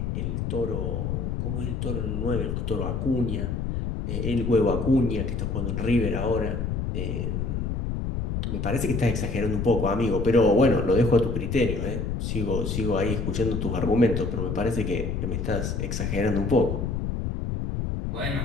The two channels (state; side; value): noise; left; rumble, 2 dB below the sound